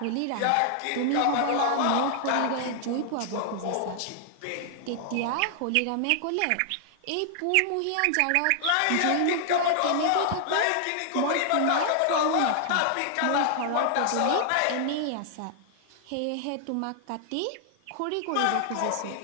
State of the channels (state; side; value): different; both; correlation 0.00